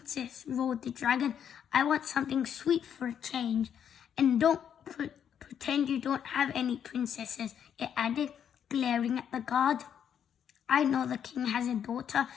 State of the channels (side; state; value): right; quieter; 8.7 dB